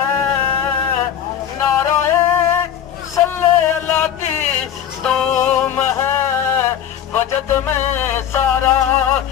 نعرہ صلی اللہ کی دوم ہے، وجد میں سارا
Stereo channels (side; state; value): right; quieter; 9.5 dB